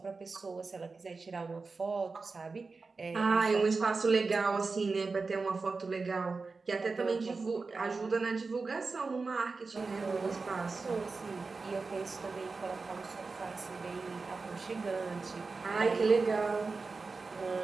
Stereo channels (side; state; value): left; quieter; 4.2 dB